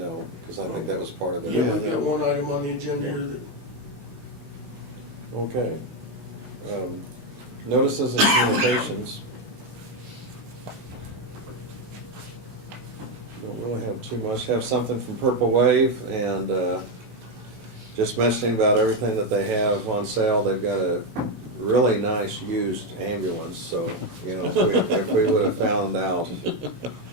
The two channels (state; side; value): late; left; 16 ms